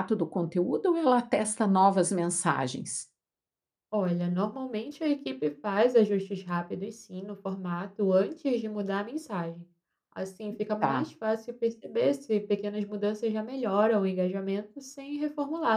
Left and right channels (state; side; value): identical; both; correlation 1.00